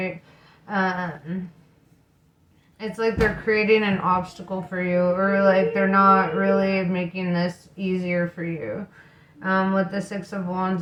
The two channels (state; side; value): identical; both; correlation 1.00